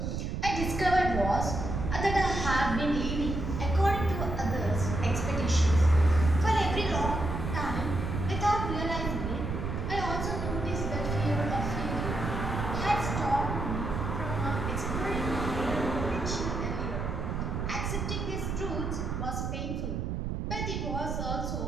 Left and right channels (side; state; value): right; noise; rumble, 3 dB below the sound